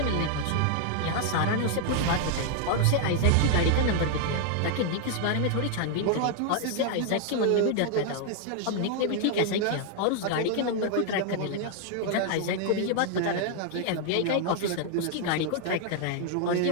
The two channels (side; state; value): both; different; correlation 0.00